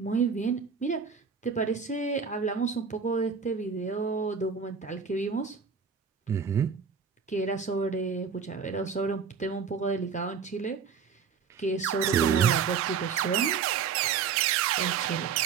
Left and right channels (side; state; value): left; quieter; 6.2 dB